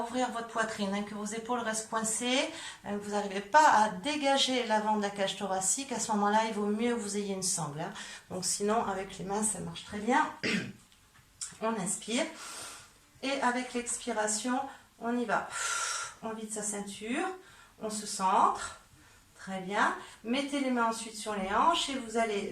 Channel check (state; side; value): identical; both; correlation 1.00